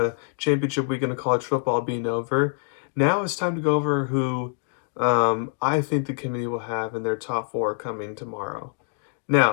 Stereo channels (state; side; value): silent; right; 59 dB below the other